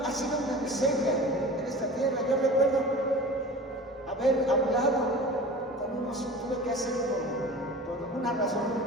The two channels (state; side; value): normal; both; correlation 0.37